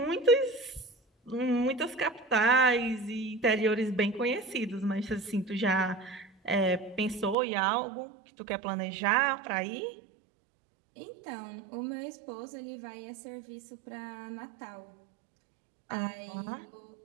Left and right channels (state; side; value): drops out; left; at 7.4 s